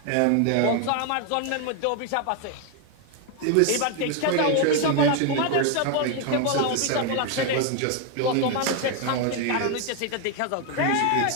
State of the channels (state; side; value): different; both; correlation 0.01